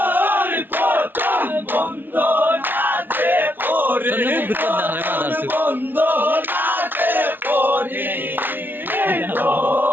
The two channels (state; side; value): late; left; 0.094 ms